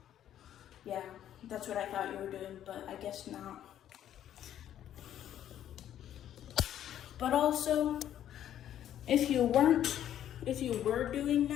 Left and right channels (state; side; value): quieter; right; 11.0 dB